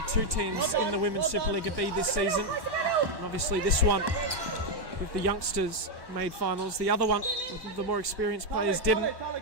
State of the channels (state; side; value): late; left; 1.1 ms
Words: two teams in the Women's Supa-Liga B this season. And obviously this one, with the youngsters, made finals. The other one, with the more experienced players, didn't.